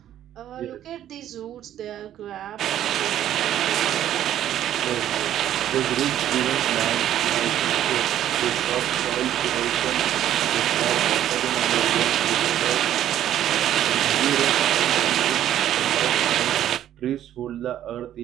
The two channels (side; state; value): left; quieter; 11.5 dB